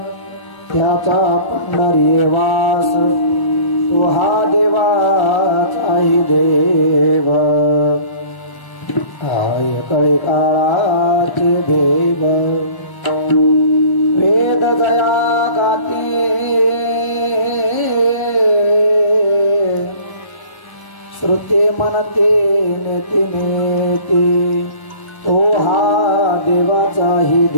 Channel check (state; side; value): late; right; 1.0 ms